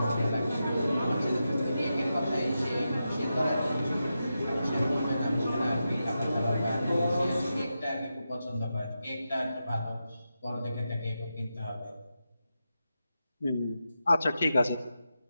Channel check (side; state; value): both; inverted; correlation -0.89